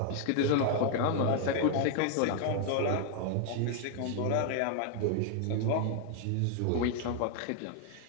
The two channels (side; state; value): both; different; correlation 0.00